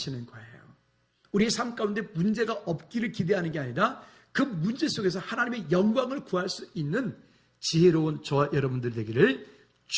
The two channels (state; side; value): identical; both; correlation 1.00